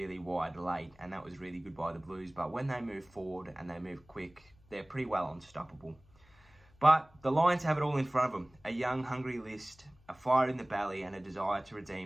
wide late, and that was really good by the Blues. But when they move forward and they move quick, they're pretty well unstoppable. But the Lions have it all in front of them. A young, hungry list, a fire in the belly, and a desire to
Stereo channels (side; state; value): left; noise; hum, 29 dB below the sound